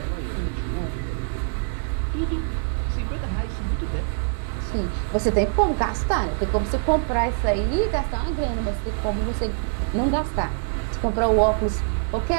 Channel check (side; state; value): left; silent; 61 dB below the other